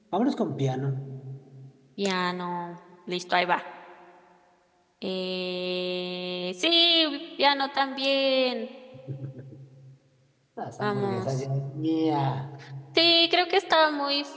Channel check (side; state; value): both; identical; correlation 1.00